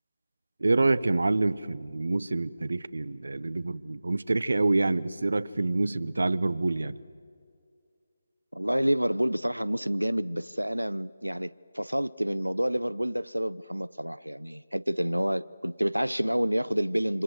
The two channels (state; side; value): inverted; both; correlation -0.99